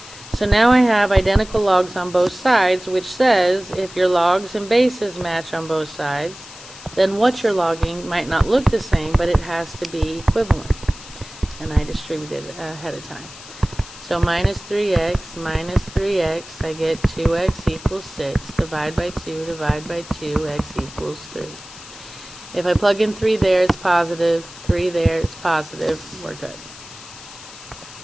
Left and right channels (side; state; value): left; noise; hiss, 17 dB below the sound